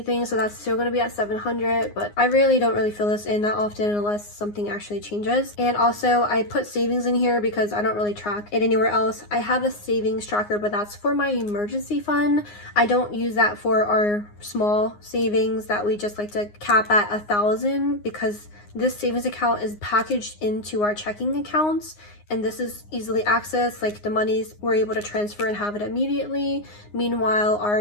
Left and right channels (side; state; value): right; late; 9.7 ms